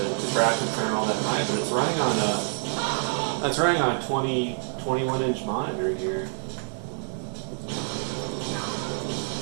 graphics aren't all that high, but it's running on a 21-inch monitor here.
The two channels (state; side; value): silent; left; 60 dB below the other